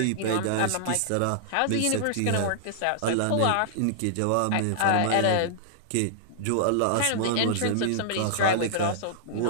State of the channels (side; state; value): both; different; correlation -0.01